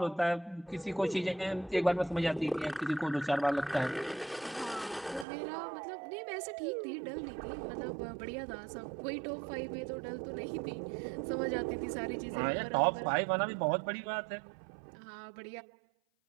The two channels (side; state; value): left; drops out; at 5.2 s